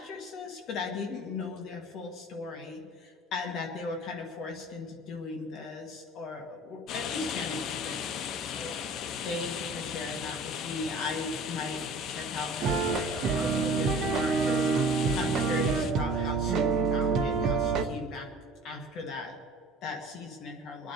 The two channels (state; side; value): normal; both; correlation 0.44